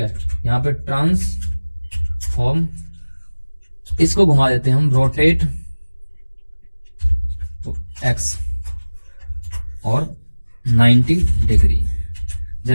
यहाँ पे ट्रांसफॉर्म, इसको घुमा देते हैं हम रोटेट एक्स और 90 डिग्री।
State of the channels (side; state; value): both; inverted; correlation -1.00